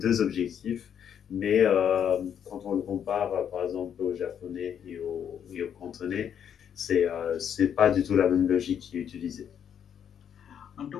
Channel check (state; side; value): quieter; right; 8.6 dB